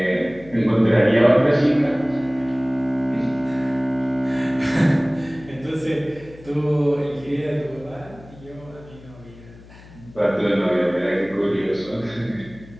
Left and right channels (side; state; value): left; noise; hum, 21 dB below the sound